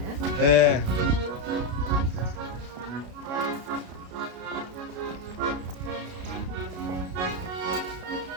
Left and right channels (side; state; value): left; late; 33 ms